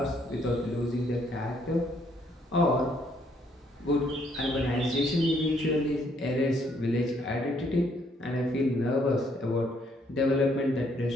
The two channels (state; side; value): normal; both; correlation 0.69